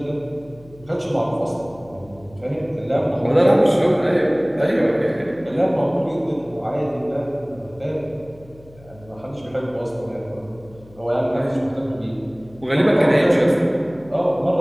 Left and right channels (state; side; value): noise; left; hum, 23 dB below the sound